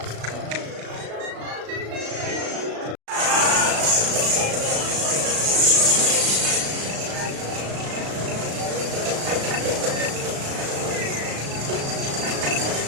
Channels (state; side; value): late; left; 36 ms